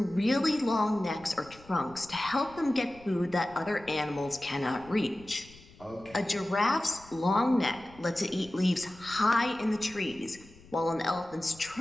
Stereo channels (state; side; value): noise; left; rumble, 23 dB below the sound